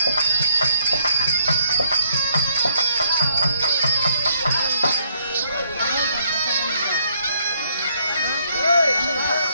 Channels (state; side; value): inverted; both; correlation -0.68